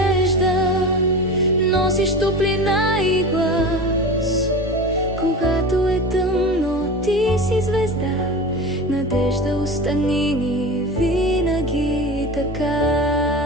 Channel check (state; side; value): normal; both; correlation 0.30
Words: носиш топлина и глас. Когато е тъмно, ти си звезда. Надежда, остани ни винаги така.